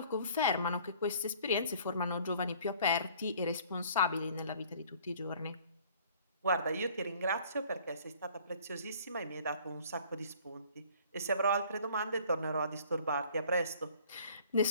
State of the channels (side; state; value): both; inverted; correlation -0.53